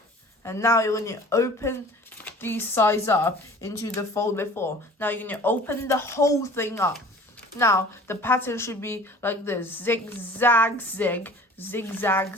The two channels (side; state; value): both; normal; correlation 0.46